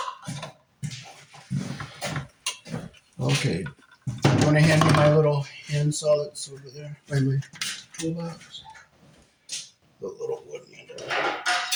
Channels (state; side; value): identical; both; correlation 1.00